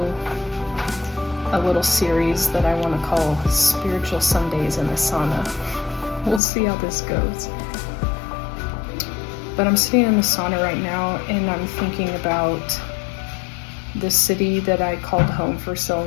a little series that I want to call Spiritual Sundays in the Sauna. We'll see how this goes. But I'm sitting in the sauna right now, and I'm thinking about the city that I called home for so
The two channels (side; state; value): right; drops out; at 6.4 s